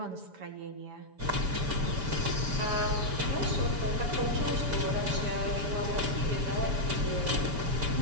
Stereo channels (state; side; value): late; left; 7.0 ms